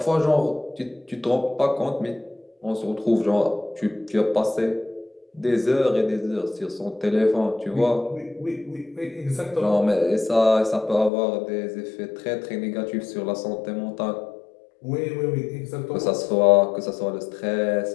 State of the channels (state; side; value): drops out; right; at 11.1 s